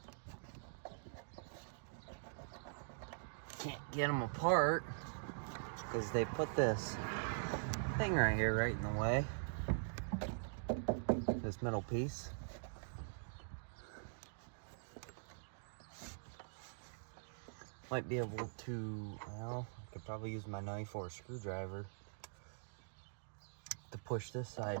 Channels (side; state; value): left; silent; digital silence